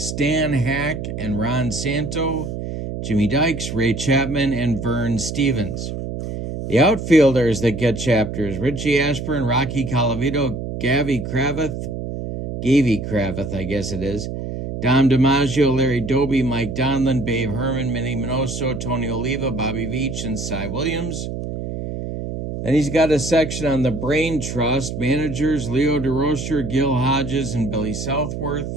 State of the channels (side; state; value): right; noise; hum, 6 dB below the sound